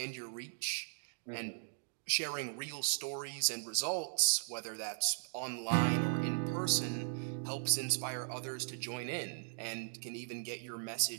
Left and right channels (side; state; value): left; silent; digital silence